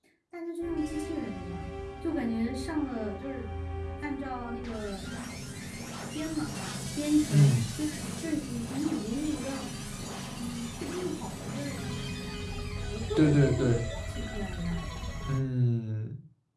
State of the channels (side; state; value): both; identical; correlation 1.00